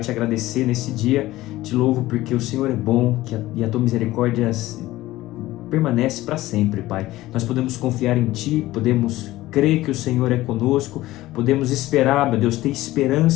agradecer nesse dia. Te louvo porque o Senhor é bom e a tua misericórdia permanece para sempre, Pai. Nós podemos confiar em Ti, podemos crer que o Senhor é conosco, podemos esperar, meu Deus, ter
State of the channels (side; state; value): right; quieter; 16.9 dB